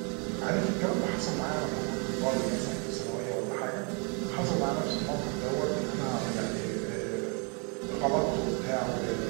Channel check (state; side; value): quieter; left; 36.3 dB